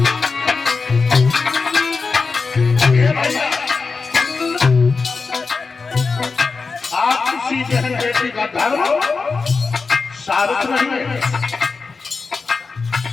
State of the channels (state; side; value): quieter; right; 4.5 dB